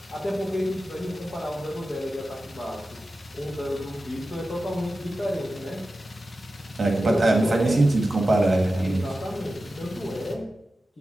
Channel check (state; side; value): normal; both; correlation 0.93